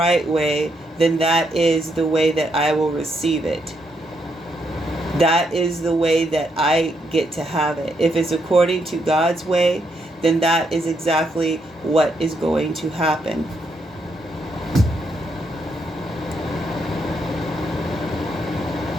way, then that is the way that I will receive it. That is the way that I get to have it. If it's according to God's way, then that is exactly what is going to happen.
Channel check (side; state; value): both; normal; correlation 0.77